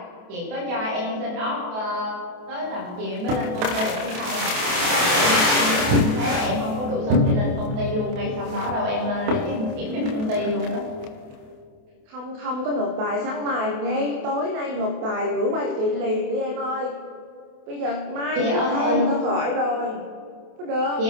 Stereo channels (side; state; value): left; late; 28 ms